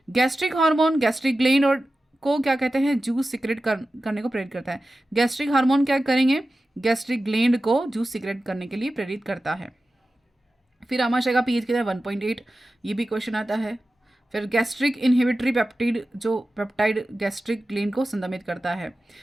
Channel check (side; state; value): both; normal; correlation 0.94